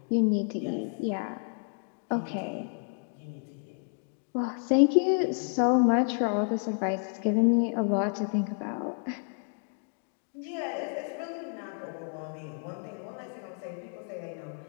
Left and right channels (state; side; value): silent; right; 56 dB below the other